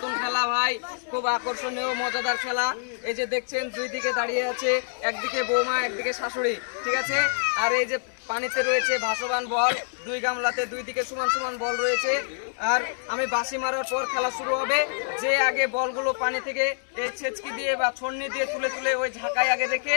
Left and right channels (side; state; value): right; silent; digital silence